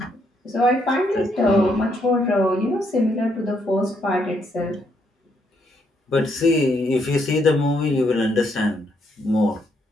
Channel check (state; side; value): normal; both; correlation 0.74